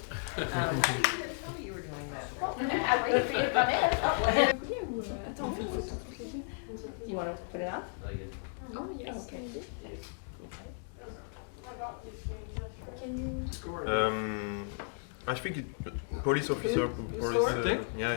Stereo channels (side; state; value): right; silent; 55 dB below the other